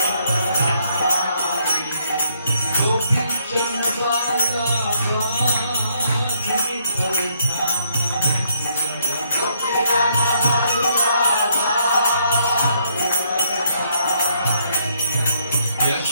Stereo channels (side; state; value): both; inverted; correlation -0.70